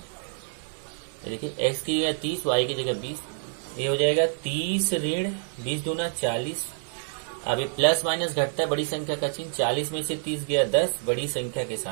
देखिए x की जगह 30, y की जगह 20, ये हो जाएगा 30 ऋण 20 दूना 40। अब ये प्लस माइनस घटता है, बड़ी संख्या का चिन्ह, 40 में से 30 गया 10, बड़ी संख्या के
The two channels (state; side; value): silent; left; 60 dB below the other